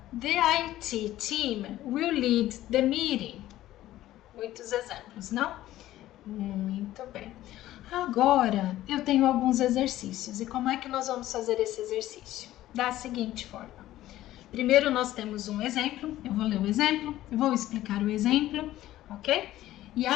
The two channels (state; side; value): quieter; right; 14.5 dB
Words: The IT team will lead the meeting. Muitos exemplos, não? Muito bem. Agora, eu tenho alguns exercícios. E como é que nós vamos fazer esse exercício? Da seguinte forma. Primeiro, nós temos um exemplo. Eu vou ler o exemplo, eu vou explicar o exemplo, ok? E